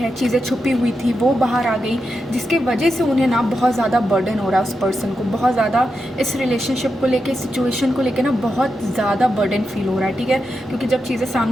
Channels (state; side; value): normal; both; correlation 0.87